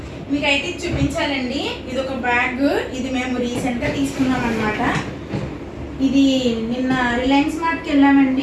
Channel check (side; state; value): both; identical; correlation 1.00